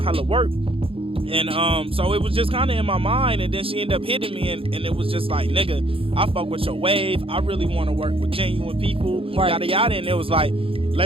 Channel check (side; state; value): left; late; 0.27 ms